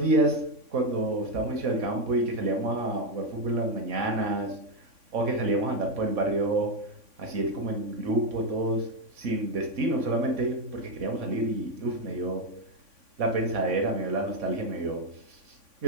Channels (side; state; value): left; late; 3.5 ms